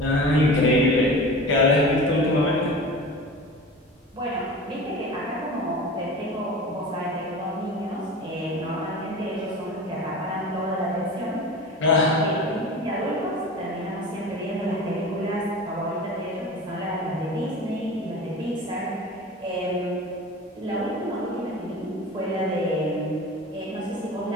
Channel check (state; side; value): normal; both; correlation 0.34